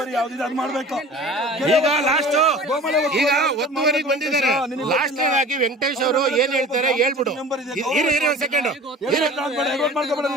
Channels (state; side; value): normal; both; correlation 0.41